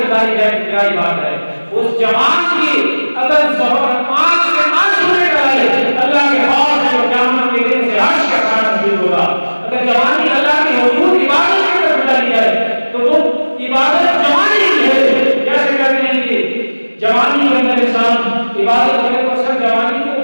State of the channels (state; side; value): inverted; both; correlation -1.00